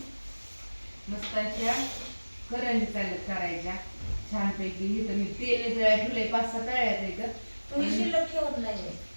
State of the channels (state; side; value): inverted; both; correlation -1.00